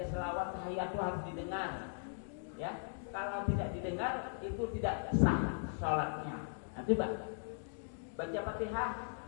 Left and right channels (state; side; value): silent; right; digital silence